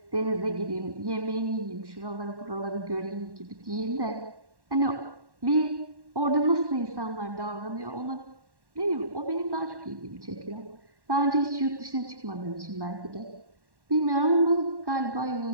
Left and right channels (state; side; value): late; left; 1.1 ms